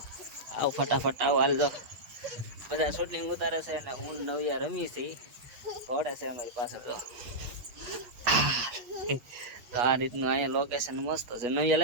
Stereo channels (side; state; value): left; late; 8.3 ms